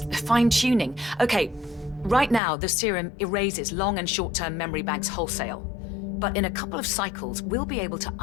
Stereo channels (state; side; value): drops out; right; at 2.4 s